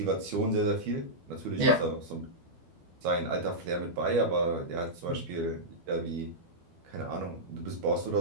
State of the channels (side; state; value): left; late; 12 ms